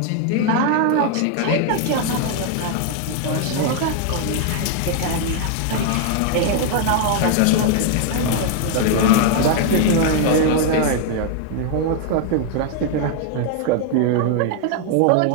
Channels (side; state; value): both; different; correlation 0.00